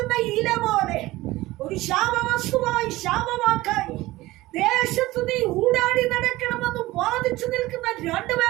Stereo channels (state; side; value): quieter; left; 18.4 dB